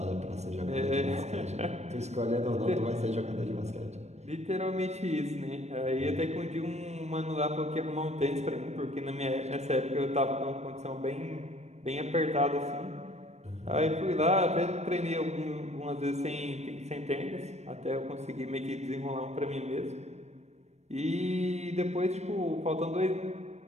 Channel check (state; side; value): late; left; 0.32 ms